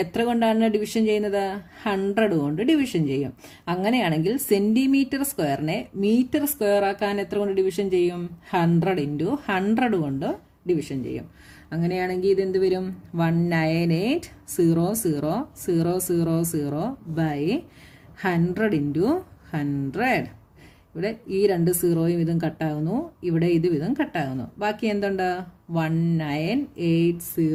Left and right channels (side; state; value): both; identical; correlation 1.00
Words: എത്ര കൊണ്ടാണ് ഡിവിഷൻ ചെയ്യുന്നത്? 100 കൊണ്ട് ഡിവിഷൻ ചെയ്യും. അങ്ങനെയാണെങ്കിൽ സെൻറ്റിമീറ്റർ സ്ക്വയറിനെ മീറ്റർ സ്ക്വയർ ആക്കാൻ എത്ര കൊണ്ട് ഡിവിഷൻ ചെയ്യും? 100 × 100 കൊണ്ട് ഡിവിഷൻ ചെയ്യും. അങ്ങനെയാണെങ്കിൽ ഇതെന്ത് വരും? 1980000 ബൈ 100 × 100. ഇവിടെ ഈ 2 സീറോയും ഇതും കട്ടാകുന്നു, ഇവിടെ ഇതും കട്ടാകുന്നു. ബാക്കി എന്തുണ്ട്?